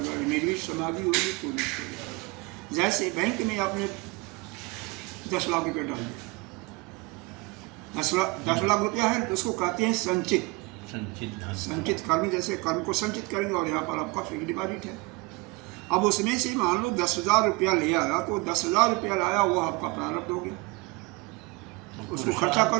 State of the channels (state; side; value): quieter; left; 25.4 dB